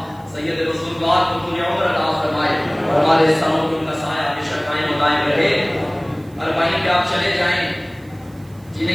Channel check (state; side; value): noise; right; hiss, 29 dB below the sound